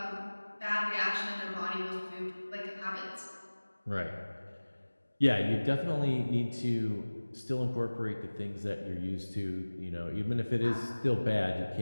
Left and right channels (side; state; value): both; inverted; correlation -1.00